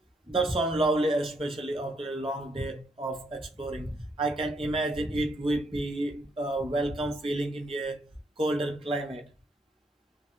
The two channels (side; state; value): both; normal; correlation 0.74